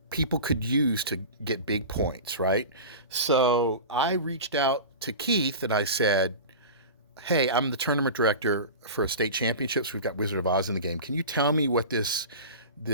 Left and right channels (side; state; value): both; inverted; correlation -0.32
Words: people could use to get big points, right? So I reached out to Keith and I said, hey, I'm the tournament director for state championships. We've got Wizard of Oz in the game. Can you tell me what this